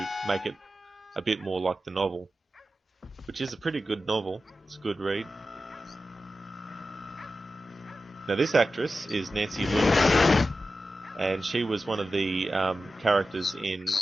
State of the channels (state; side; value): normal; both; correlation 0.93